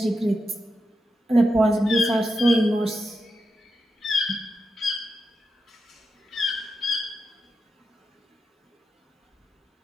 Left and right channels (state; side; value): normal; both; correlation 0.87